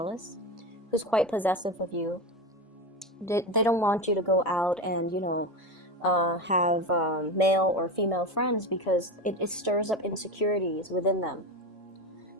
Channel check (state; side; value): normal; both; correlation 0.21